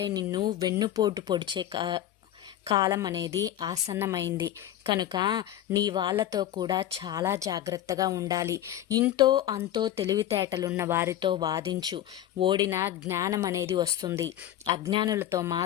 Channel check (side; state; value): right; quieter; 12.1 dB